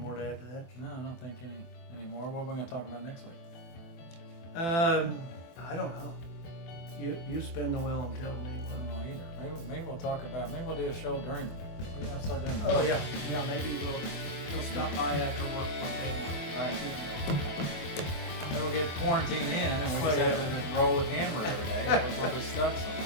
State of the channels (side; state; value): right; late; 24 ms